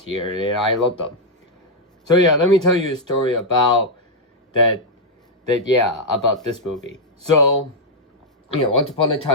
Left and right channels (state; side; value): normal; both; correlation -0.03